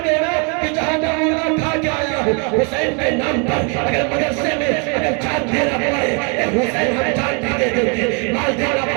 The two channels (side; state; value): left; quieter; 35.6 dB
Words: देना कि जहां मैं मुर्गा खा के आया हूँ, हुसैन के नाम पर अगर मदरसे में अगर जान देना पड़े, हुसैन हम जान भी दे देंगे, माल देना